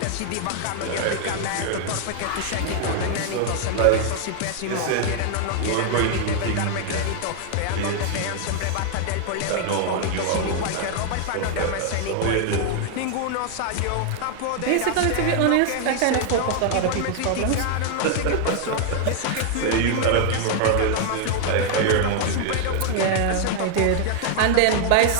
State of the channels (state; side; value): different; both; correlation 0.00